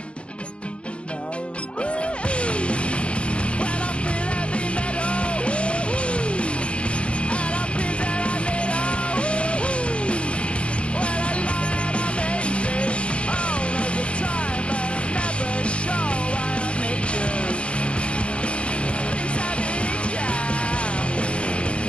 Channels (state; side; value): late; right; 0.060 ms